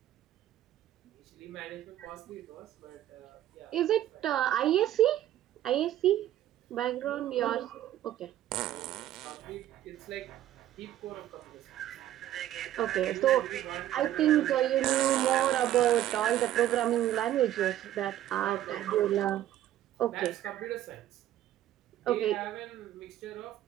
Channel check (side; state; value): left; quieter; 12.8 dB